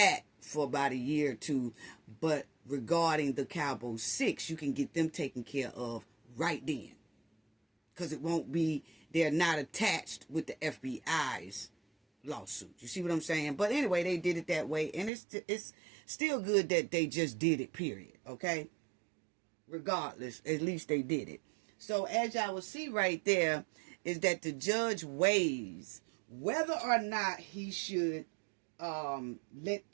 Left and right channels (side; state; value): left; drops out; at 15.1 s